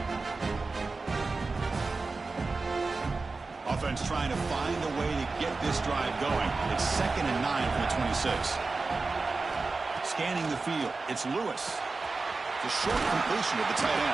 Offense trying to find a way to get this drive going. It's 2nd and 9 from the 26. Scanning the field, it's Lewis. The short completion to the tight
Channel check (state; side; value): quieter; left; 3.9 dB